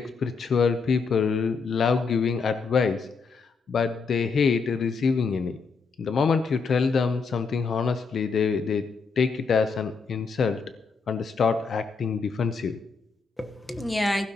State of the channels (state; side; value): quieter; right; 4.9 dB